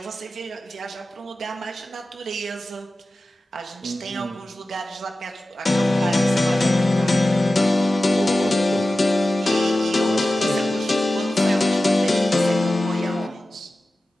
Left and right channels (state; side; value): normal; both; correlation 0.94